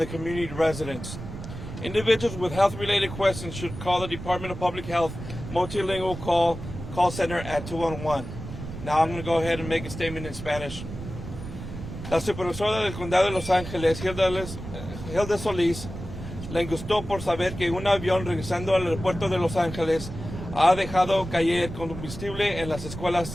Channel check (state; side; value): noise; right; rumble, 10 dB below the sound